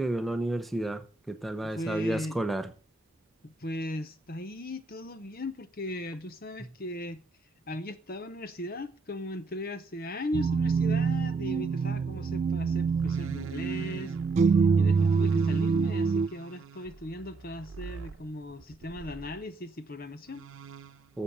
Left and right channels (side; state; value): left; quieter; 3.6 dB